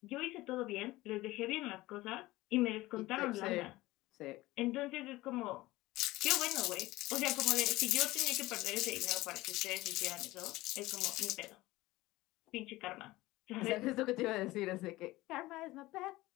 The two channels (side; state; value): right; quieter; 18.7 dB